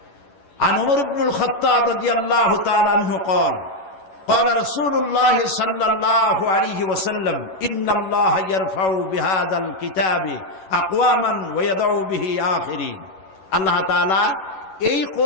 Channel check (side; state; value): right; late; 11 ms